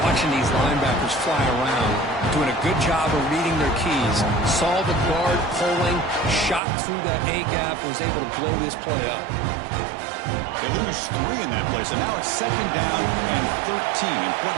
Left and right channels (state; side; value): drops out; left; at 6.6 s